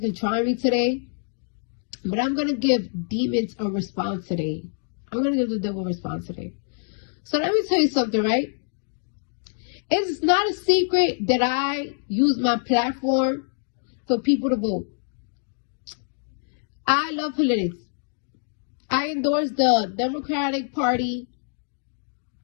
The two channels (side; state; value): right; silent; digital silence